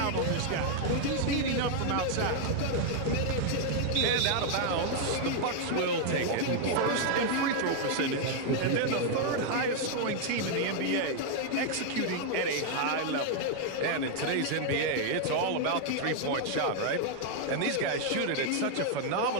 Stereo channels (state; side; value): different; both; correlation 0.00